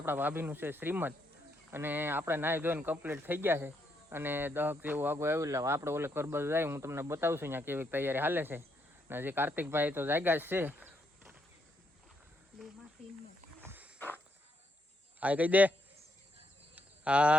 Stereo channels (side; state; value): both; normal; correlation 0.77